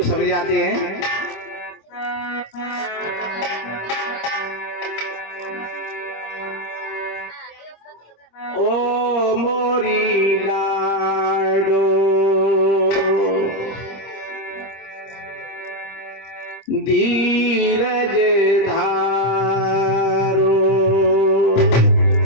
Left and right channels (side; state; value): right; late; 25 ms